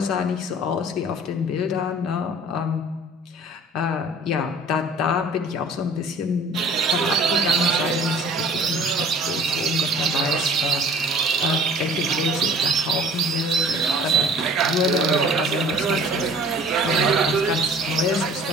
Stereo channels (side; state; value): both; normal; correlation 0.50